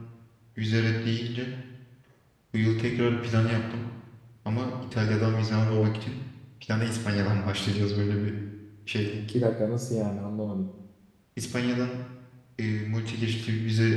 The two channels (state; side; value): identical; both; correlation 1.00